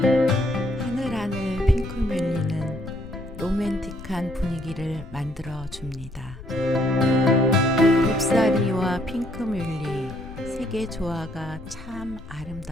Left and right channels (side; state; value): left; noise; rumble, 15 dB below the sound